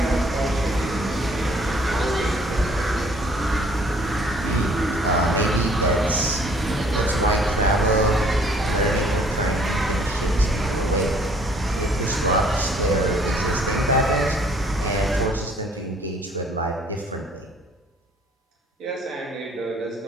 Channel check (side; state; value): both; normal; correlation 0.59